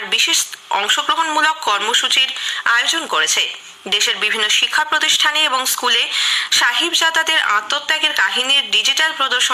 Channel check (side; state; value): both; identical; correlation 1.00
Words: বিশেষ অংশগ্রহণমূলক কর্মসূচির আয়োজন করেছে। দেশের বিভিন্ন শিক্ষা প্রতিষ্ঠানে এবং স্কুলে সাহিবজাদাদের আত্মত্যাগের কাহিনীর ডিজিটাল